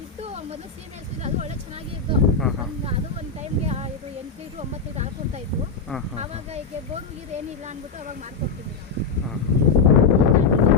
ಇತ್ತು ಮೊದಲು ಸೀಮೆ ಹಸು, ಅದು ಒಳ್ಳೆ ಚೆನ್ನಾಗಿ ಇತ್ತು. ಅದು ಒಂದು ಟೈಮ್ಗೆ ಇದು 8 ಲೀಟ್ರ್ 9 ಲೀಟ್ರ್ ಹಾಲು ಕೊಡ್ತಾ ಇತ್ತು. ಆವಾಗ ಈಗ ಬೋನ್ ಗೀರು ಏನಿಲ್ಲ ಅಂದ್ಬಿಟ್ಟು ಅವಾಗ ಮಾಡ್ಕೊಡ್ತೀನಿ. ಹಾಂ.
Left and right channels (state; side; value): quieter; right; 5.0 dB